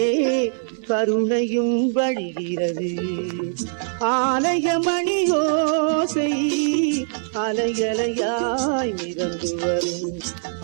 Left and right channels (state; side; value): silent; left; 62 dB below the other